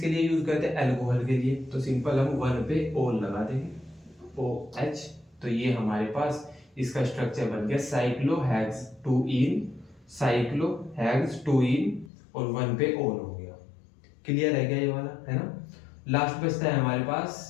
लिए यूज करते हैं, एल्कोहल के लिए, तो सिंपल हम वन पे ओल लगा देंगे ओ एच। तो ये हमारे पास इसका स्ट्रक्चर बन गया साइक्लोहेक्स टू इन, साइक्लोहेक्स टू इन और वन पे ओल हो गया। क्लियर है क्या ये वाला, है ना। लास्ट बचता है हमारे पास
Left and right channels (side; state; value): right; drops out; at 12.1 s